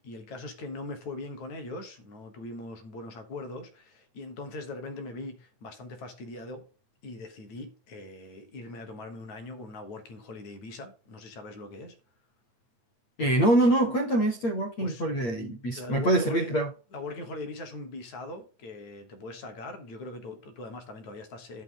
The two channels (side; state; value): right; late; 8.7 ms